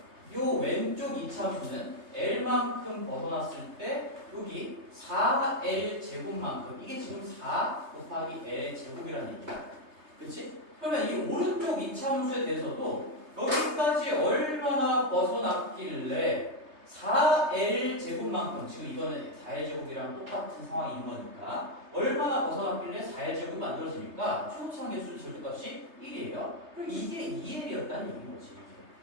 요 왼쪽 이차함수는 L만큼 벗어났을 때, 여기 4L 제곱만큼, 이게 지금 4 곱하기 L 제곱이라는 얘기야. 그치? 그러면 이 오른쪽 이차함수에 대해서도 여기까지 얼마나 벗어났길래 4L 제곱만큼 지금 이거는 4L 제곱이랑 똑같은 상황인 거니까 얼마나 벗어났길래 4L 제곱이 만들어지니까 최고치 한계수 절대값이 1이에요. 그럼 이게 2L이었다는 얘기인 거지.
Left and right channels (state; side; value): late; left; 3.3 ms